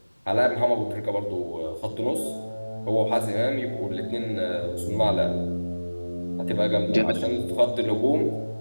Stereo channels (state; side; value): inverted; both; correlation -1.00